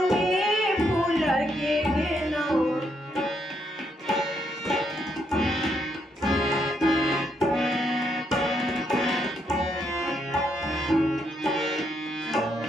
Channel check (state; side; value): normal; both; correlation 0.76